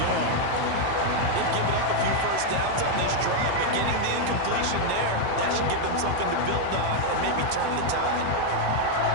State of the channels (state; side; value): different; both; correlation 0.00